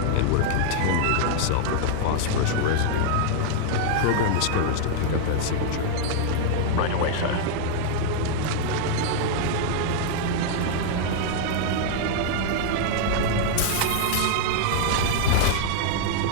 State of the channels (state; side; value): different; both; correlation -0.01